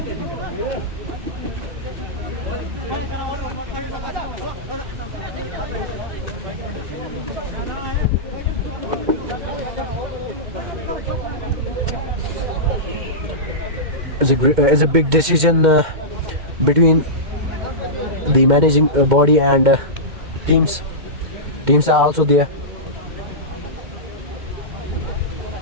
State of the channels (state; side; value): late; left; 2.1 ms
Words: It's a big decision between the managing body and teams. teams are also there.